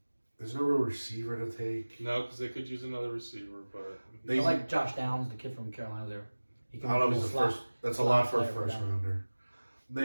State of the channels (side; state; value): both; inverted; correlation -1.00